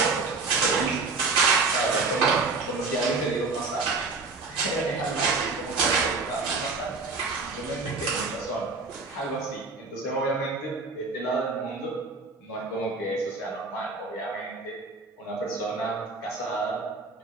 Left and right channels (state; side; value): quieter; left; 3.9 dB